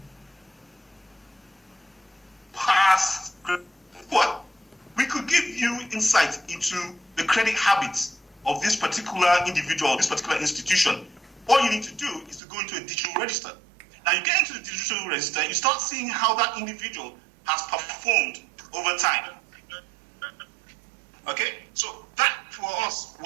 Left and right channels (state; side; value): drops out; left; at 12.4 s